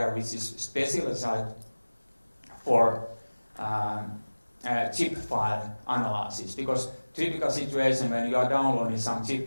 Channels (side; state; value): both; inverted; correlation -1.00